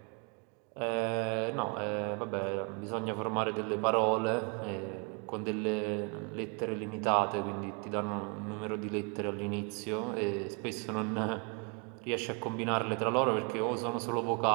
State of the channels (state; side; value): quieter; left; 34.3 dB